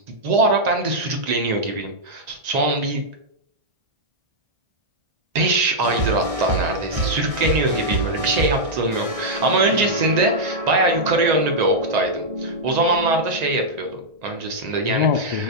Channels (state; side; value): late; left; 1.6 ms